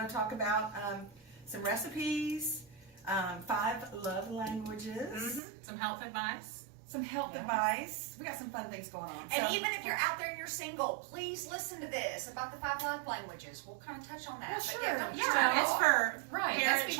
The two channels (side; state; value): left; drops out; at 5.4 s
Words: to talk about some recipes, 5 love languages, Some health advice. some health advice. We got some fun things going on. And So- even if you're out there and you're single, please listen to this about the 5 love languages. We'll kind of touch on that. Well, But sure. yeah, don't Yeah, it's for Right,